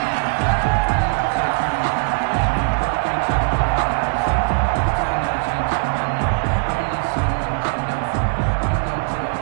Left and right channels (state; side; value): silent; left; 61 dB below the other